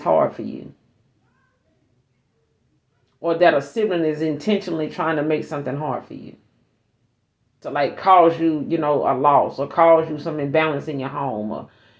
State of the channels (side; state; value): both; identical; correlation 1.00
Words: hard for you. Or that a sibling is intentionally trying to make something hard for you. To like cause you, a loss, or cause you some imbalance in your home, or